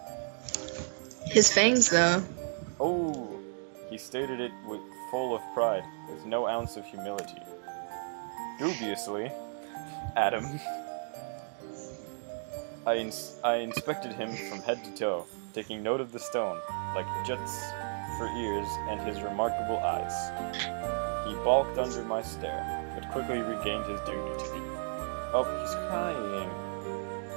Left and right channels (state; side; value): silent; left; digital silence